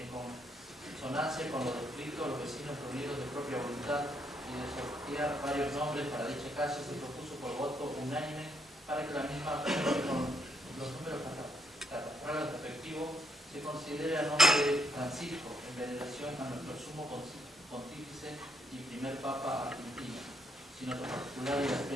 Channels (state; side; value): normal; both; correlation 0.74